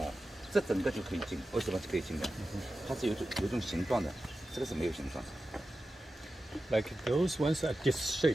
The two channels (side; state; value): both; normal; correlation 0.93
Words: 这整个就可以进，为什么是可以进的？它是有一种形状的，这个是没有形状。Like those ones are